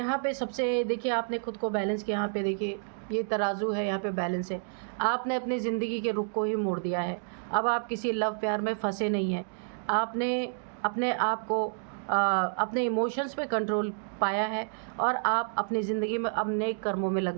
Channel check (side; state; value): left; silent; digital silence